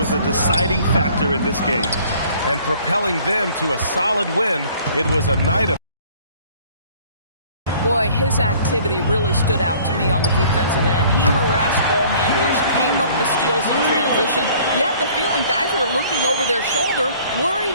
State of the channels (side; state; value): both; inverted; correlation -0.54